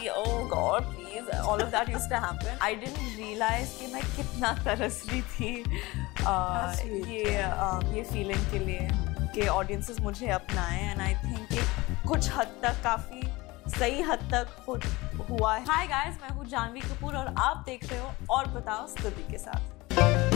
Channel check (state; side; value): quieter; right; 21.7 dB